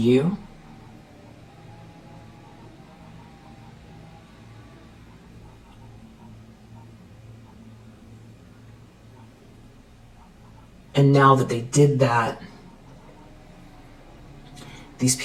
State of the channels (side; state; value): both; identical; correlation 1.00